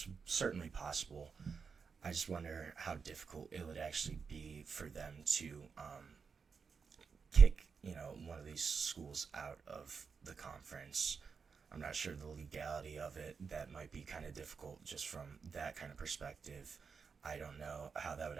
certainly possible. I just wonder how difficult it would actually be for them to kick, one of these schools out of the conference. I'm not sure the legality of it. That might be kind of difficult just from that kind of perspective. I don't know how that would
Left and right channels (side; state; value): left; quieter; 5.6 dB